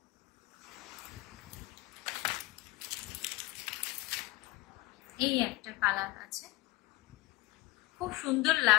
এই একটা কালার আছে, খুব সুন্দর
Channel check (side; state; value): right; quieter; 20.4 dB